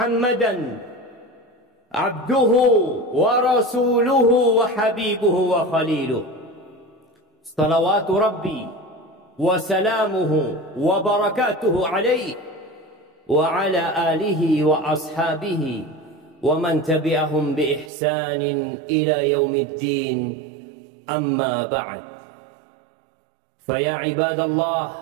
عبده ورسوله وحبيبه وخليله صلوات ربي وسلامه وبركاته عليه وعلى آله وأصحابه ومن تبعهم بإحسان إلى يوم الدين. أما بعد، فيا عباد الله،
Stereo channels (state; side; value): drops out; left; at 17.9 s